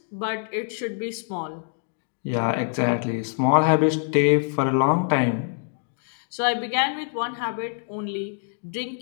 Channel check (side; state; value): right; silent; digital silence